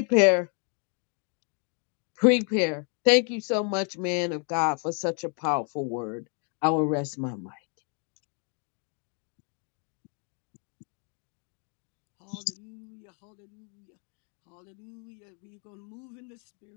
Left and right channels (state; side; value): quieter; right; 39.5 dB